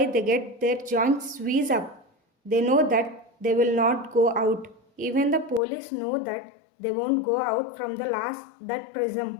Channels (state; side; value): drops out; right; at 5.6 s